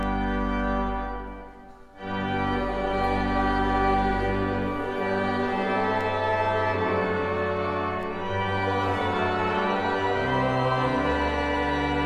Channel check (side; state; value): both; identical; correlation 1.00